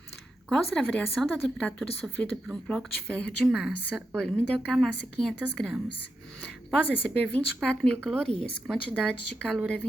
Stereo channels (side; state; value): both; normal; correlation 0.86